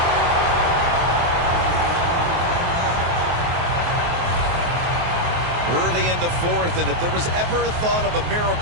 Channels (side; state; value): left; late; 23 ms